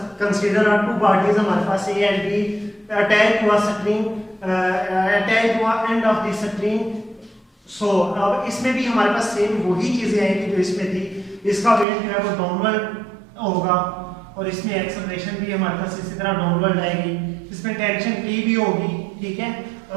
कंसीडर आर टू बॉडीज, हमारे पास ए एंड बी अटैच हुआ स्ट्रिंग, अटैच हुआ एंड ऑफ द स्ट्रिंग। सो अब इसमें भी हमारे पास सेम वही चीजें आएंगी जो इसमें थी। इसका वेट जो है वो डाउनवर्ड होगा और इसमें एक्सेलरेशन भी हमारे पास इसी तरह डाउनवर्ड आएगी। इसमें टेंशन टी भी होगी, ठीक है,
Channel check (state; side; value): drops out; left; at 11.9 s